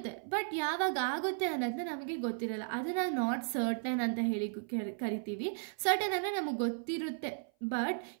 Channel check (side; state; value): left; silent; 54 dB below the other